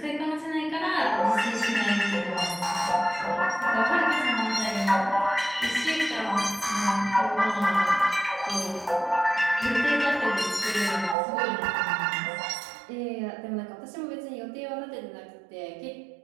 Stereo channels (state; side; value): drops out; left; at 11.2 s